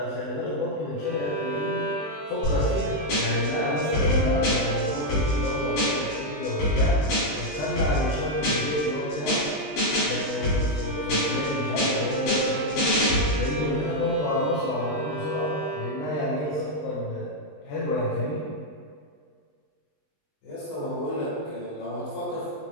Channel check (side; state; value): right; late; 20 ms